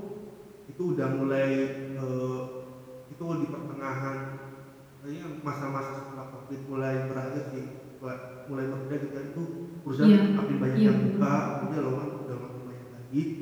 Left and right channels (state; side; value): identical; both; correlation 1.00